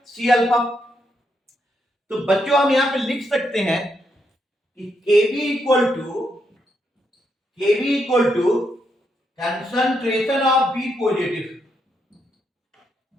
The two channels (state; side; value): normal; both; correlation 0.79